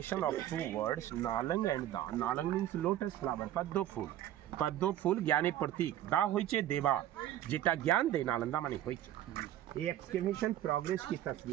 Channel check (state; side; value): quieter; left; 12.6 dB